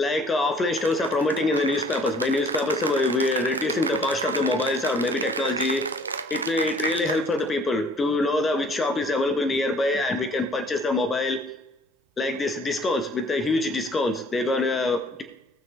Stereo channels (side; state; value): both; normal; correlation 0.56